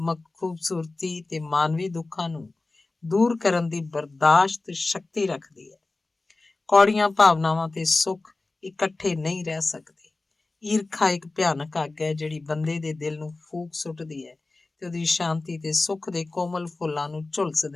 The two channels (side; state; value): right; quieter; 3.3 dB